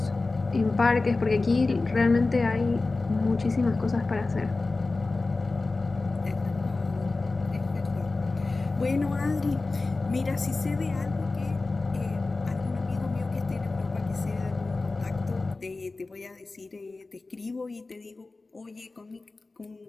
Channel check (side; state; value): right; quieter; 3.5 dB